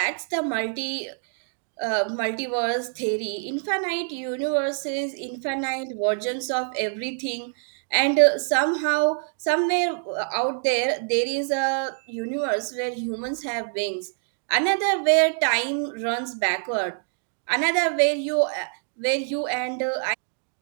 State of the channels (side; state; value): left; silent; 61 dB below the other